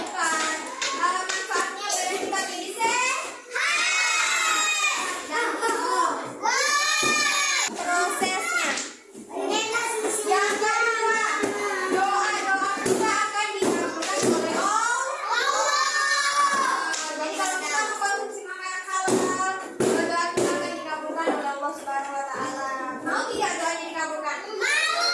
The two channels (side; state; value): both; identical; correlation 1.00